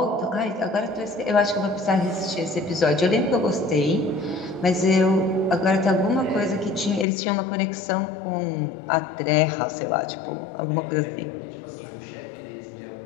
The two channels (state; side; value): drops out; right; at 7.1 s